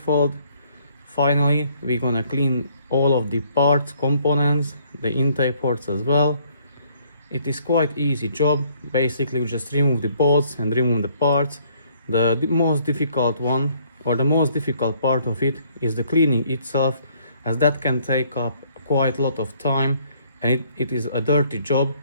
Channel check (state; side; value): inverted; both; correlation -0.64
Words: Finally, we're gonna clean all of the parts, components, the intake ports as well. It is quite easy job. Basically, we just remove the bolts and remove the parts. The most difficult one, or the most difficult part of it, is the cleaning itself, as that can take up quite a lot of time, and it is a dirty job.